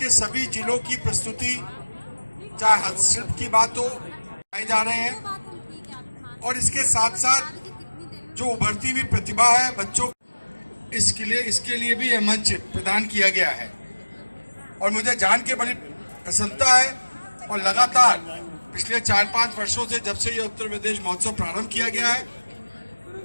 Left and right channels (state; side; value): inverted; both; correlation -1.00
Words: सभी जिलों की प्रस्तुति, चाहे हस्तशिल्प की बात हो, आए जा रहे हैं। और इसके साथ साथ जो उभरती हुई प्रतिभा है बच्चों, इसके लिए भी यह मंच प्रदान किया गया है। और मुझे जान के बड़ी प्रसन्नता है और लगातार पिछले 4-5 वर्षों से, जब से ये उत्तर प्रदेश महोत्सव प्रारंभ किया गया है,